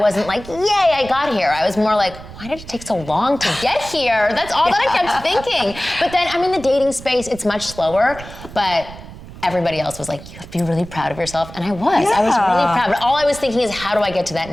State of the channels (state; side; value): noise; right; rumble, 15 dB below the sound